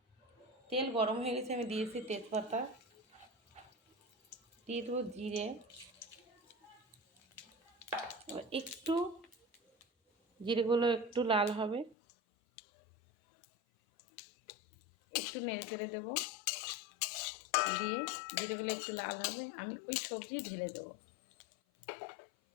তেল গরম হয়ে গেছে, আমি দিয়েছি তেজপাতা, দিয়ে দেবো জিরে। এবার একটু জিরেগুলো একটু লাল হবে, একটু নেড়ে চেড়ে দেবো, দিয়ে জিরেগুলো একটু লাল হবে আমি ওই সবজি ঢেলে দেবো।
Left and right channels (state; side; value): drops out; right; at 12.0 s